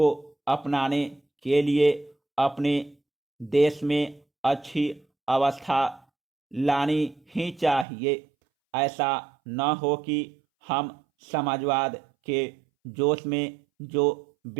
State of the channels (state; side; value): drops out; left; at 7.9 s